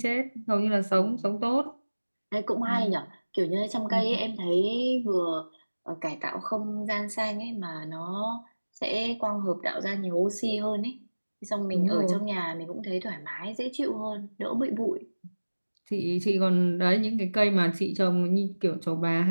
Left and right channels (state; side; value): inverted; both; correlation -1.00